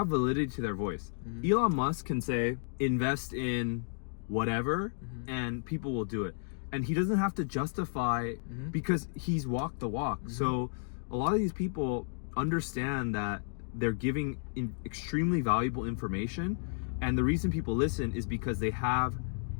validity to their voice. Elon Musk can say, invest in whatever, and people will do it. And he doesn't have to justify because he's walked the walk. So a lot of these people understand that they're giving extremely valuable information. And the reason people listen is because they have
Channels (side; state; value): right; silent; digital silence